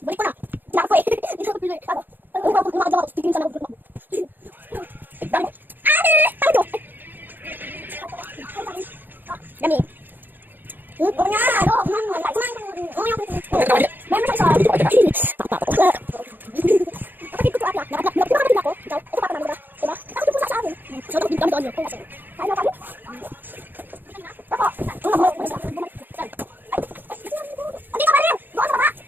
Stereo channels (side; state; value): left; late; 0.091 ms